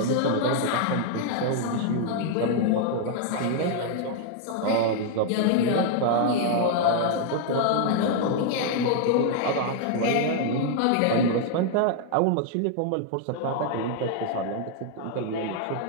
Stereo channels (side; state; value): both; different; correlation 0.00